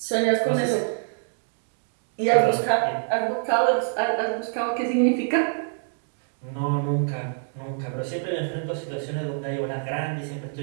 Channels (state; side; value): silent; left; digital silence